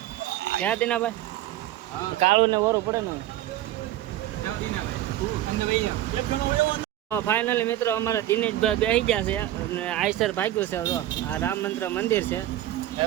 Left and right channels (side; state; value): left; quieter; 13.9 dB